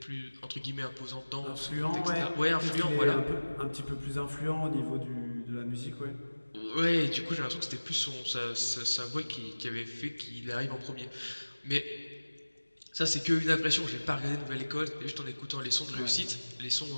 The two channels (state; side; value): inverted; both; correlation -1.00